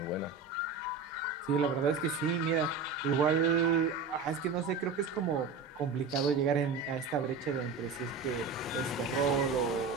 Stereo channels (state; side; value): quieter; left; 4.7 dB